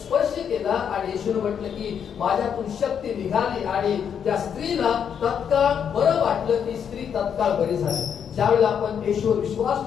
स्पर्श केला आणि येशूने म्हटलं की माझ्यातून शक्ती निघाली आणि त्या स्त्रीला तत्काळ बरं वाटलं. ती स्त्री तत्काळ बरी झाली. ज्यावेळेला आपण येशूवर विश्वास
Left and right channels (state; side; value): quieter; right; 7.9 dB